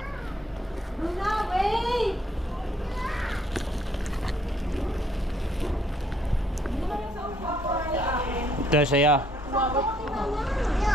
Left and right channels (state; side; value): normal; both; correlation 0.67